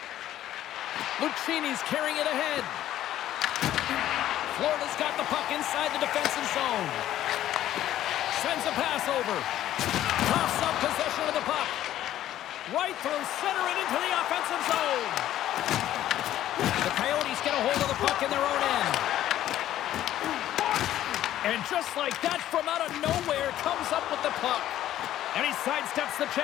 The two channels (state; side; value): quieter; right; 12.7 dB